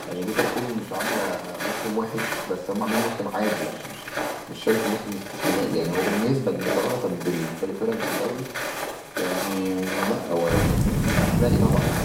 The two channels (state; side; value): identical; both; correlation 1.00